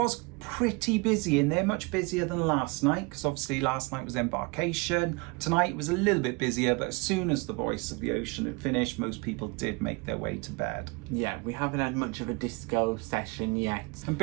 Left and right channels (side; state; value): left; quieter; 28.0 dB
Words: pretty busy in there, much busier than last night, because obviously last night was embarkation. Tonight was a little bit busier, but as soon as the Voice of the Ocean had finished, most people did make their way to bed. Yeah, we haven't had much of a disco session yet. And